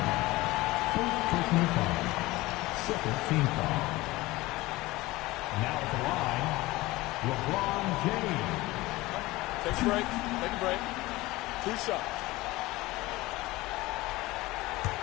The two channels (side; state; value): right; quieter; 19.7 dB